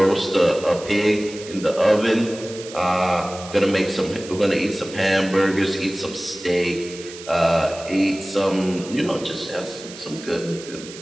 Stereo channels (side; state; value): right; noise; hiss, 15 dB below the sound